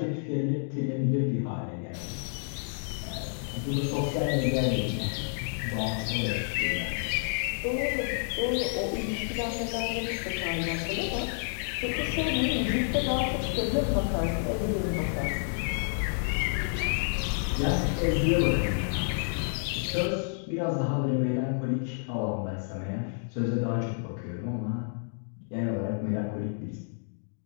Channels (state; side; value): silent; right; digital silence